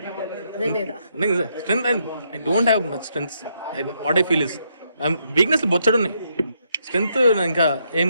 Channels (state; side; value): inverted; both; correlation -0.77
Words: లేదా? Strength. I don't have much strength. What I feel is weakness బొచ్చడు ఉన్నాయి. స్ట్రెంత్ ఇంకా ఏం